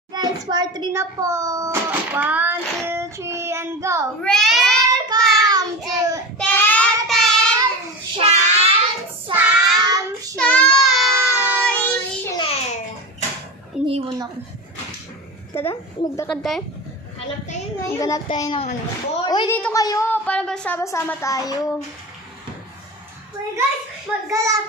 Guys, part 3 na po. 1, 2, 3, and go. Welcome to Teten Sam Channel. Iniwan ako. Tara, maglakad tayo. Hanap tayo ngayon. Maghanap tayo ng ano. Uy, dito kayo. Para sama-sama tayo. Uy guys, maggala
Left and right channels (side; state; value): both; normal; correlation 0.26